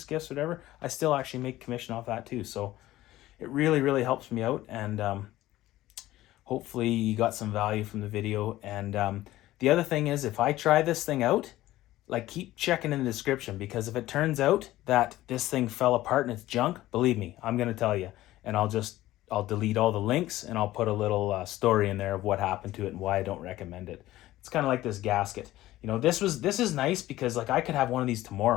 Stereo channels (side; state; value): right; quieter; 15.7 dB